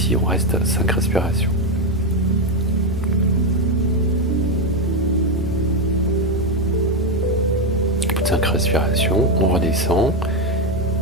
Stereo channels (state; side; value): normal; both; correlation 0.07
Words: on reste à 5 respirations. Au bout de 5 respirations, on redescend